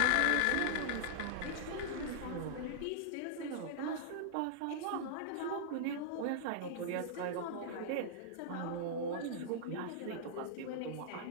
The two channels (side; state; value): both; different; correlation -0.01